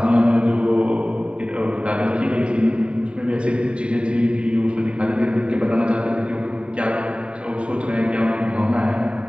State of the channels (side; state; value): left; late; 0.056 ms